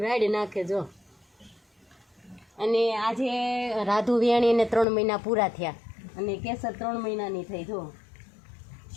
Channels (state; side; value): drops out; right; at 4.9 s